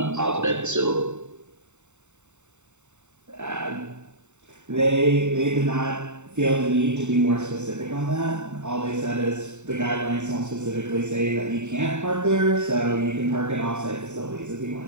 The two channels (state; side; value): late; left; 0.84 ms